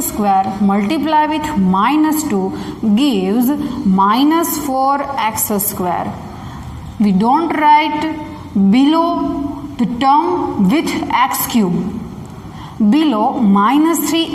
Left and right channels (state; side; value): identical; both; correlation 1.00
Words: square multiply with minus 2 gives minus 4x square. We don't write below the term with x cube. Below minus